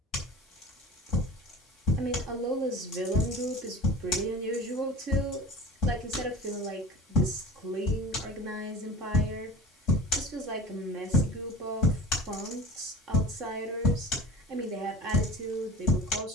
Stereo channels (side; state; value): both; normal; correlation 0.39